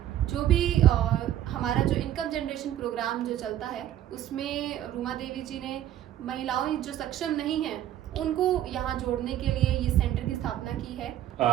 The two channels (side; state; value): left; quieter; 12.0 dB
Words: जो भी हमारा जो इनकम जनरेशन प्रोग्राम जो चलता है, उसमें रूमा देवी जी ने महिलाओं जो सक्षम नहीं हैं उनको यहाँ जोड़ने के लिए ये सेंटर की स्थापना की